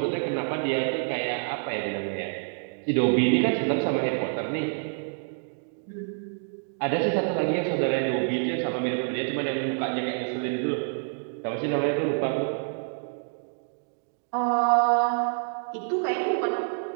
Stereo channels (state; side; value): silent; left; digital silence